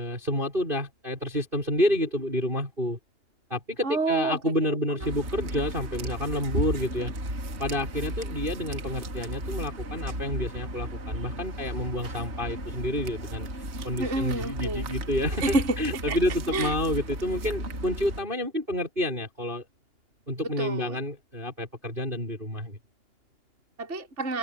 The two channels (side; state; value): left; late; 2.8 ms